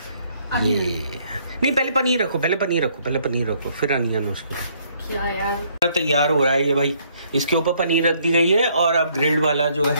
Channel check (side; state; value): both; inverted; correlation -0.67